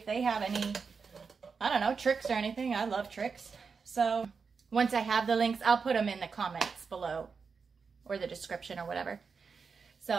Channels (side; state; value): left; quieter; 5.3 dB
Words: they have any, I don't know, tricks or anything. I love tricks. So once I have the links, I'll put them in the comments below or the description or whatever.